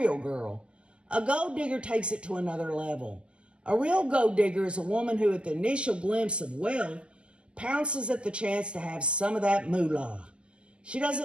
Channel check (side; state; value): left; late; 0.058 ms